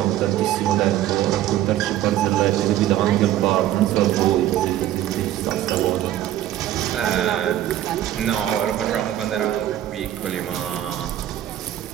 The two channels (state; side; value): quieter; left; 12.7 dB